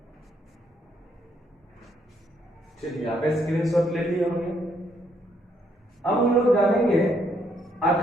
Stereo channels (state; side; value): normal; both; correlation 0.72